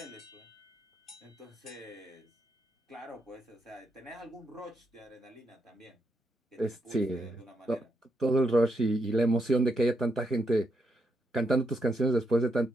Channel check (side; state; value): both; normal; correlation 0.80